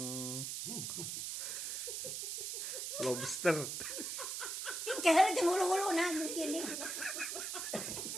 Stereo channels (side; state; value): right; noise; hiss, 3 dB below the sound